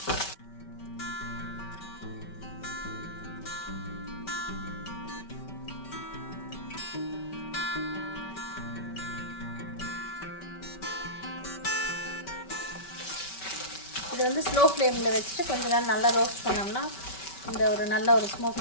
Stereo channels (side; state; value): right; late; 5.2 ms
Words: இது வந்து ஸ்லோ ஃப்ளேமில் வச்சுட்டு கொஞ்ச நேரம் நல்லா ரோஸ்ட் பண்ணோம்னா இந்த ஒரு நல்ல ஒரு